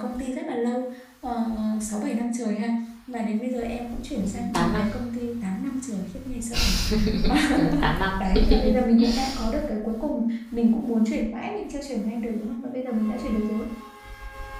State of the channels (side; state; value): both; identical; correlation 1.00